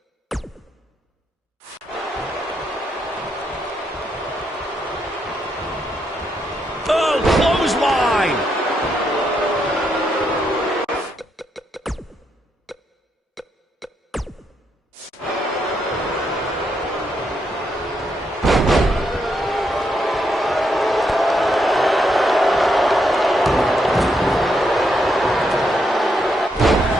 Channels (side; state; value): both; normal; correlation 0.78